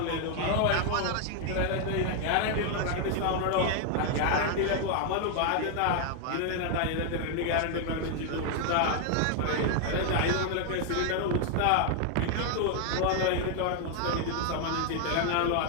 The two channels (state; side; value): different; both; correlation 0.00